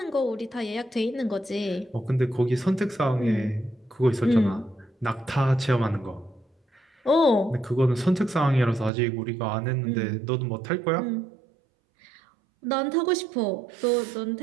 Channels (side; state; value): left; drops out; at 8.9 s